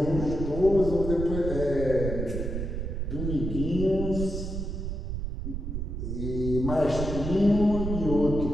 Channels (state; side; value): noise; right; rumble, 4 dB below the sound